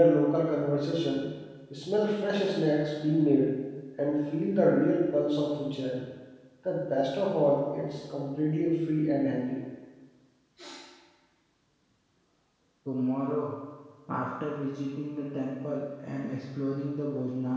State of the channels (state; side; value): identical; both; correlation 1.00